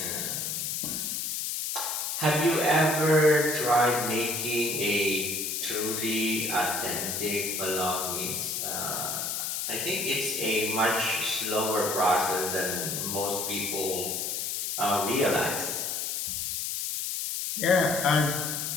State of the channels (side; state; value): left; noise; hiss, 2 dB below the sound